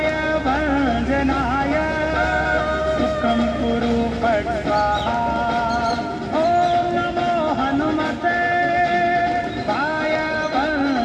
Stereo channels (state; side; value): identical; both; correlation 1.00